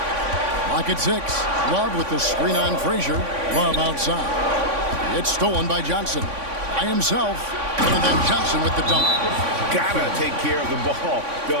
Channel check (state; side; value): late; left; 3.5 ms